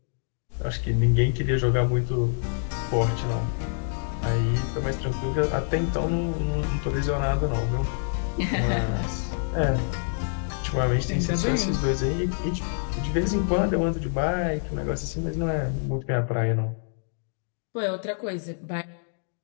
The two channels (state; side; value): silent; right; digital silence